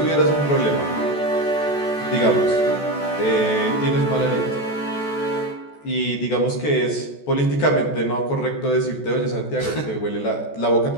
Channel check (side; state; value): right; late; 14 ms